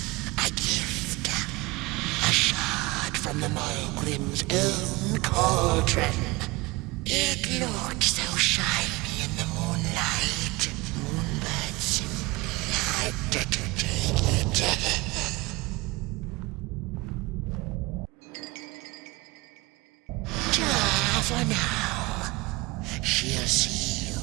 A gift. A shard from the Mogrim's own cauldron. It looked so shiny in the moonlight. Moonbird simply had to take it. For now, she'll see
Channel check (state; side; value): quieter; left; 23.1 dB